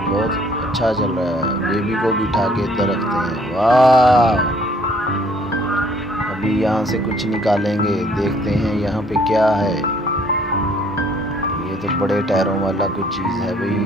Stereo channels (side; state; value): both; normal; correlation 0.61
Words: बहुत अच्छा चल रहा है। बेबी को बिठा के इधर रखते हैं। वाह अभी यहाँ से कुछ निकालेंगे, देखते हैं यहाँ पे क्या है। ये तो बड़े टायरों वाला कुछ चीज़ है